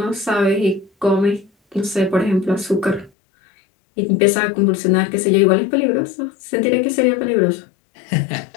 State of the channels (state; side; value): drops out; right; at 3.1 s